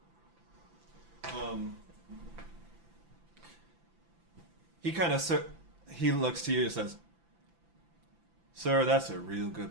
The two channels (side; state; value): left; late; 5.9 ms